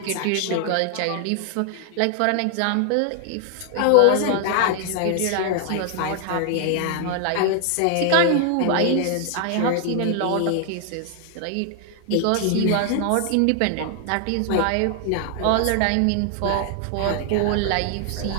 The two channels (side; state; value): both; different; correlation 0.00